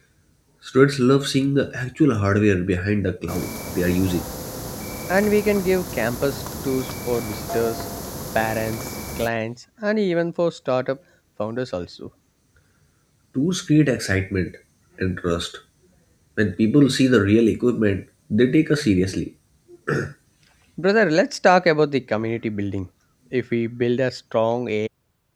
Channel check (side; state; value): both; identical; correlation 1.00